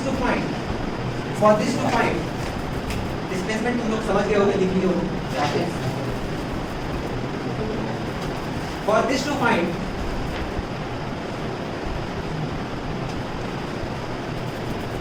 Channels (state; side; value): identical; both; correlation 1.00